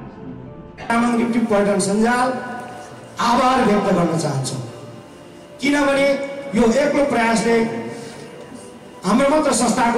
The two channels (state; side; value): identical; both; correlation 1.00